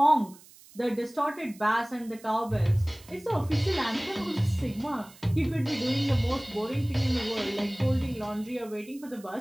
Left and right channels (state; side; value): noise; right; hiss, 23 dB below the sound